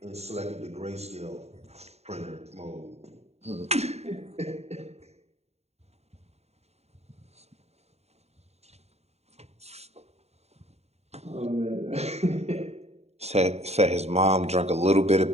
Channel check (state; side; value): late; left; 0.31 ms